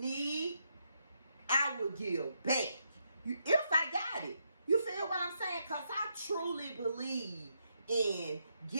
I will give back. If I got it. You feel what I'm saying? Because I truly believe in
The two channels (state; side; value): inverted; both; correlation -0.79